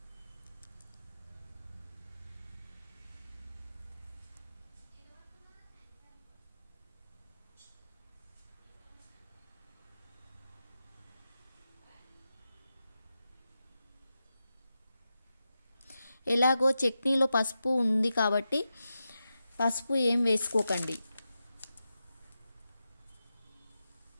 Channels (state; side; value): inverted; both; correlation -0.90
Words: ఎలాగో చట్నీలో పసుపు ఉంది కాబట్టి పసుపు ఏం వేసుకోకండి.